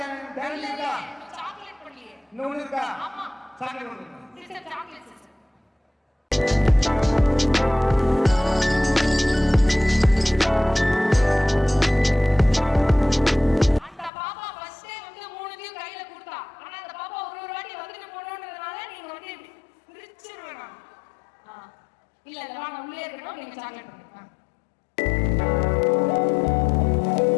டேலண்ட் இருக்கா? சாக்லேட் பண்ணலையே. இன்னொன்னு இருக்கா? ஆமா. சாக்லேட் ஒன்று. Sister chocolate sister. அந்த பாப்பா ஃபர்ஸ்டே வந்து மூணுத்தையும் கையில கொடுத்தா. ஆனா அந்த பாப்பா ஒரு வாட்டி வந்துட்டு போறோம்ன்றதுனால நீங்க வந்து பிரிச்சிருவேன் நான். இல்ல இல்ல நான் உள்ளே இருக்கணும் நீங்க சாக்லேட் பண்ணுங்க.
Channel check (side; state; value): right; drops out; at 14.1 s